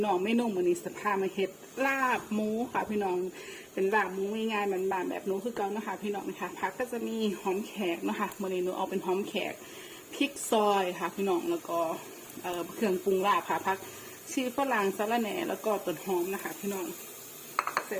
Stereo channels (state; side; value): identical; both; correlation 1.00